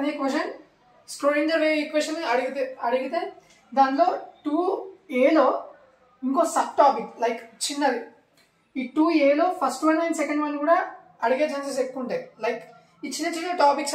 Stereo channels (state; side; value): identical; both; correlation 1.00